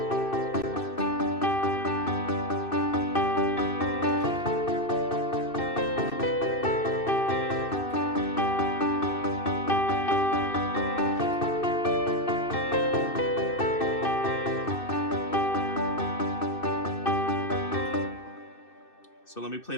So let me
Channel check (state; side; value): late; right; 2.6 ms